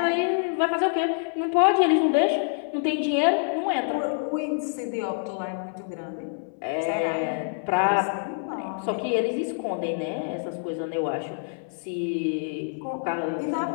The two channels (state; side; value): silent; right; 61 dB below the other